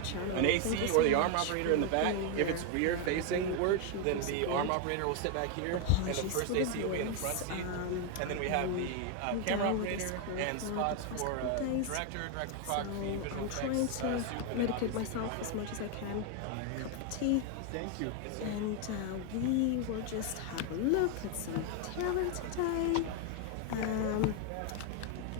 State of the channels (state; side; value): different; both; correlation 0.01